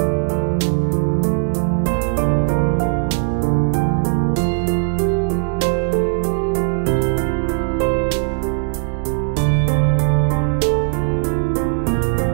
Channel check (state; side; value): silent; left; digital silence